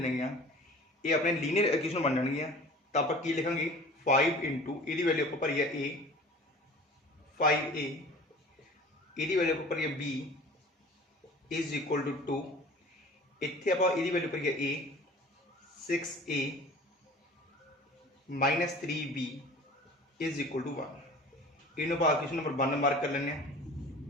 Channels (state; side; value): normal; both; correlation 0.43